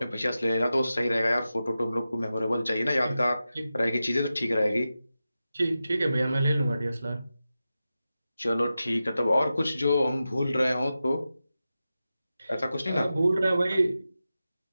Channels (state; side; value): inverted; both; correlation -0.92